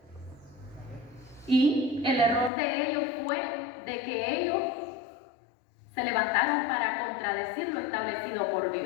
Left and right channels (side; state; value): right; drops out; at 2.5 s